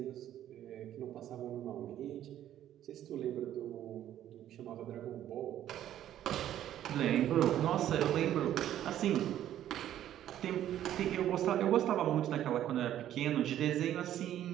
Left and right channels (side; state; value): left; quieter; 11.7 dB